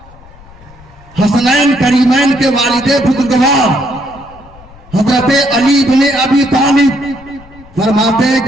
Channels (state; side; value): noise; left; rumble, 23 dB below the sound